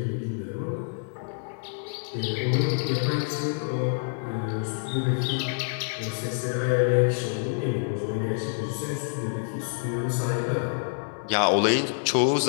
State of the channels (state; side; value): silent; right; digital silence